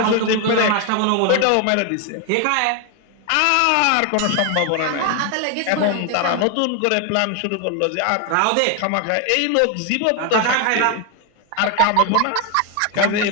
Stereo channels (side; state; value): both; different; correlation 0.01